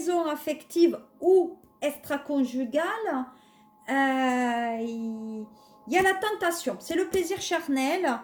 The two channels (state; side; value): identical; both; correlation 1.00